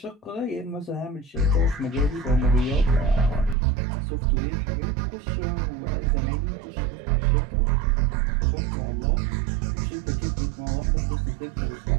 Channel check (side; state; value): left; drops out; at 3.6 s